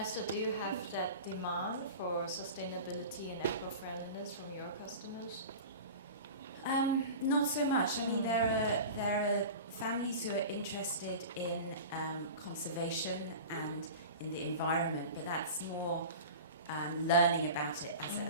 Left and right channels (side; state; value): both; inverted; correlation -0.34